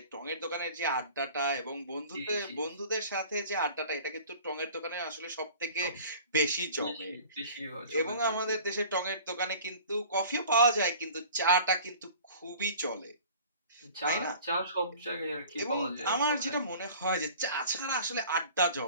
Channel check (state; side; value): inverted; both; correlation -0.45